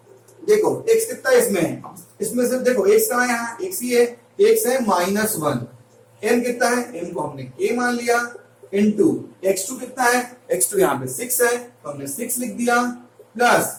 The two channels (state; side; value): identical; both; correlation 1.00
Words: देखो x कितना इसमें है, इसमें से देखो x कहां है, यहाँ x ही है, x है -1। m कितना है, m को हमने k मान लिया, इनटू x2 कितना है, x2 यहाँ पे 6 है तो हमने 6 लिख दिया,